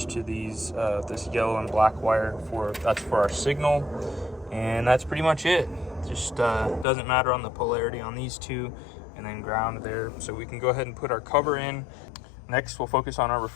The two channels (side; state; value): right; drops out; at 6.9 s